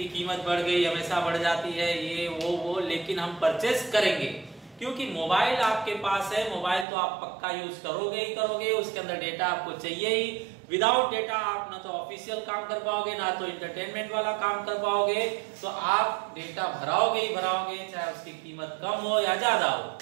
कीमत बढ़ गई, हमेशा बढ़ जाती है, ये वो, लेकिन हम परचेज करेंगे क्योंकि मोबाइल आपके पास है। मोबाइल तो आप पक्का यूज करोगे ही करोगे, उसके अंदर डेटा आपको चाहिए ही। विदाउट डेटा आप ना तो ऑफिशियल काम कर पाओगे, ना तो एंटरटेनमेंट वाला काम कर पाओगे, तो आप डेटा भराओगे ही भराओगे, चाहे उसकी कीमत कम हो या ज्यादा हो।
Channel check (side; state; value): left; drops out; at 6.9 s